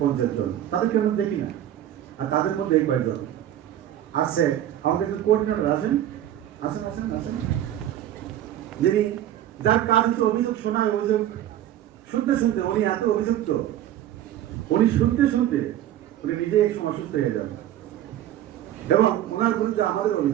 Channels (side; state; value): left; quieter; 12.0 dB